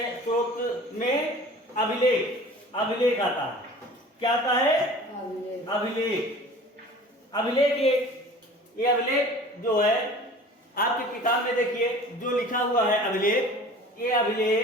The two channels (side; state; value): both; normal; correlation 0.44